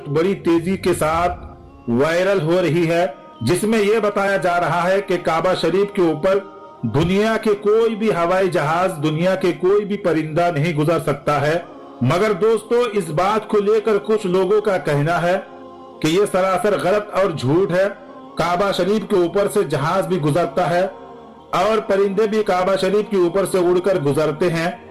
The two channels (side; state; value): both; identical; correlation 1.00